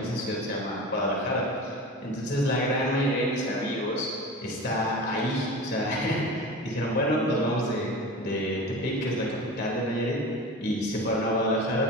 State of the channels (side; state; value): both; normal; correlation 0.33